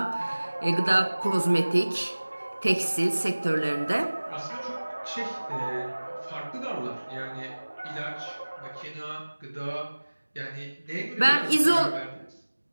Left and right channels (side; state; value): both; inverted; correlation -1.00